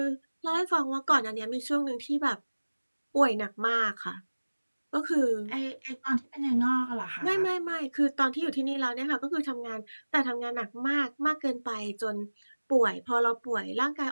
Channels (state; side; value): inverted; both; correlation -1.00